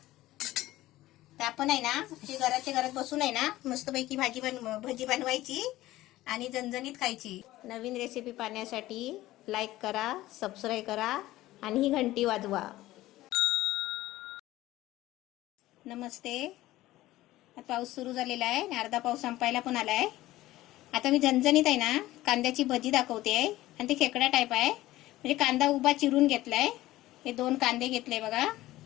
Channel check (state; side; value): quieter; right; 16.4 dB